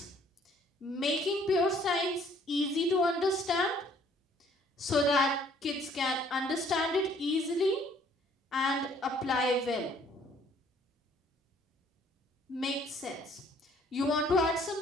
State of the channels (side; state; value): both; normal; correlation 0.60